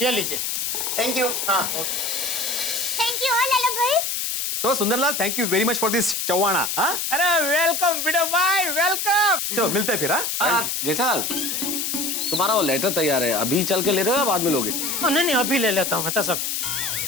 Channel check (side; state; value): left; noise; hiss, 1 dB below the sound